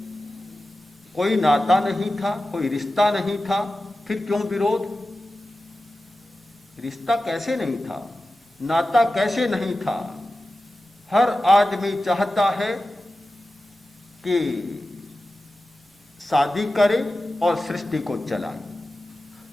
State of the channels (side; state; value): both; normal; correlation 0.94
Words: कोई नाता नहीं था, कोई रिश्ता नहीं था, फिर क्यों विरोध? रिश्ता कैसे नहीं था, नाता कैसे नहीं था? हर आदमी चाहता है कि शादी करे और सृष्टि को चलाए।